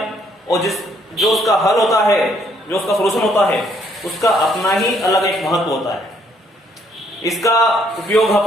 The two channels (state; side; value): normal; both; correlation 0.68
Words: और जो उसका हल होता है, जो उसका सॉल्यूशन होता है, उसका अपना ही अलग एक महत्व होता है। इसका उपयोग